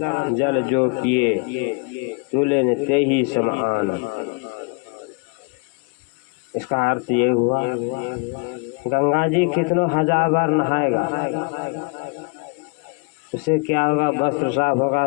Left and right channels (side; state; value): right; quieter; 32.0 dB